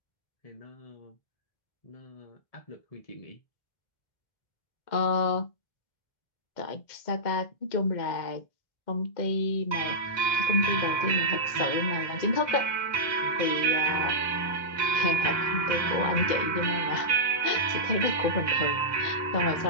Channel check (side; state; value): right; late; 2.1 ms